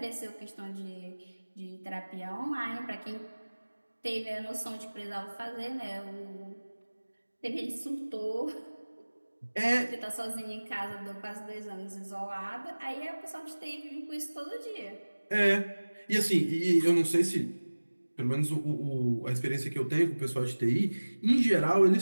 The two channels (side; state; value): both; inverted; correlation -1.00